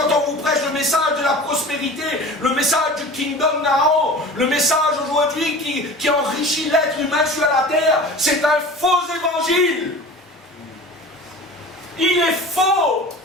on vous prêche le message de la prospérité, le message du Kingdom Now, le message aujourd'hui qui enrichit l'être humain sur la terre, c'est un faux évangile. Il est faux.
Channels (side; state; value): both; normal; correlation 0.38